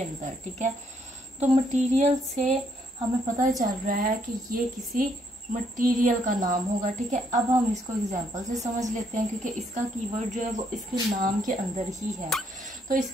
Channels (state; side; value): normal; both; correlation 0.72